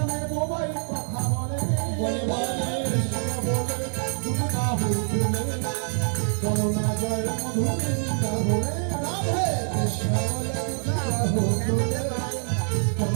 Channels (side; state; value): left; silent; digital silence